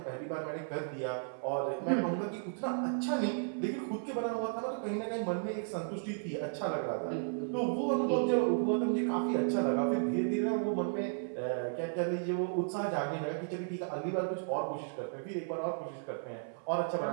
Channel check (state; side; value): silent; left; 55 dB below the other